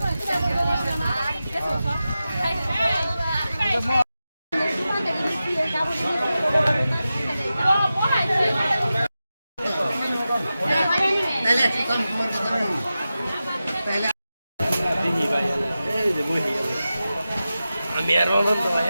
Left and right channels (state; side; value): inverted; both; correlation -0.93